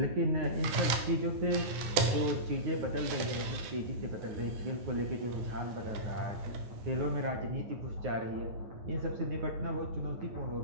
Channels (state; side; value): late; left; 10 ms